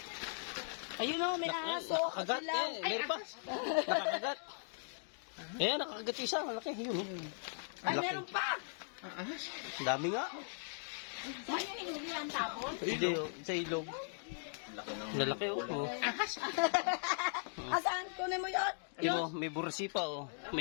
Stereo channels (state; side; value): silent; right; digital silence